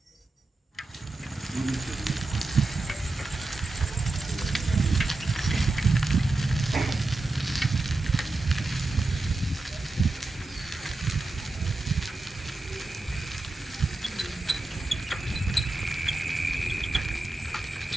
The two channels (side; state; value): left; quieter; 3.1 dB